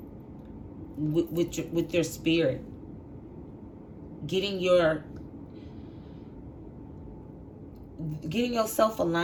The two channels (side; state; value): both; identical; correlation 1.00